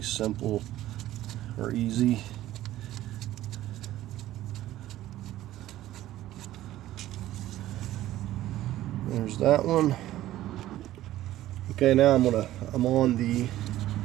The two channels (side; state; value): left; quieter; 14.4 dB